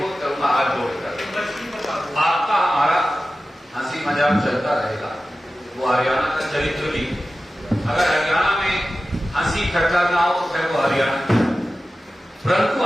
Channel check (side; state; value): both; normal; correlation 0.94